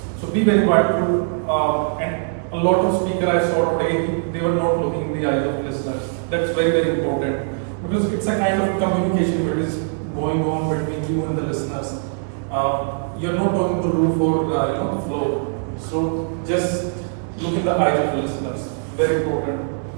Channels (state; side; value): silent; left; digital silence